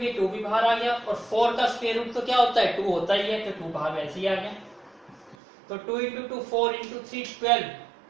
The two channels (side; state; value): left; drops out; at 5.4 s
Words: 2 भी बाहर आ गया, और 4 का स्क्वायर रूट तो क्या होता है 2 होता ही है, तो 2 बाहर वैसे ही आ गया। तो 2 इंटू 2 4 इंटू 3 12